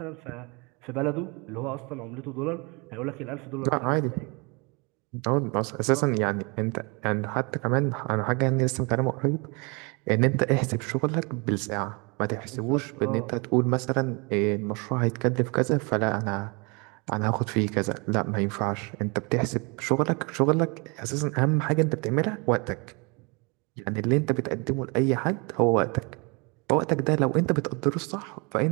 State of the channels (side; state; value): left; quieter; 30.6 dB